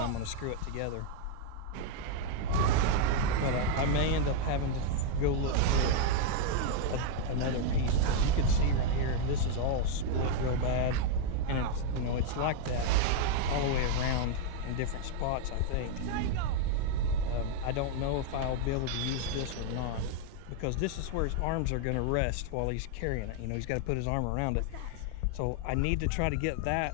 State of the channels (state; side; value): different; both; correlation 0.00